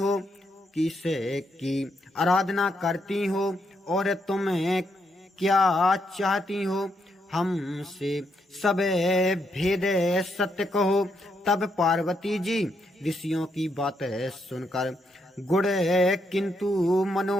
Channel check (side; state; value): both; normal; correlation 0.78